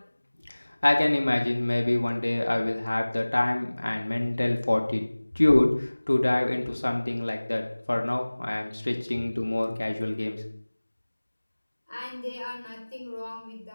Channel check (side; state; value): both; inverted; correlation -1.00